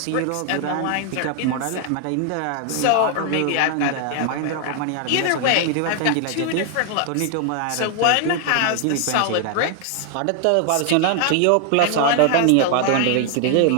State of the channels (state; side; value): different; both; correlation 0.00